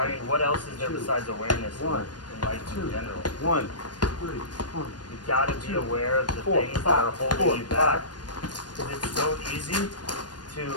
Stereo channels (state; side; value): late; right; 0.69 ms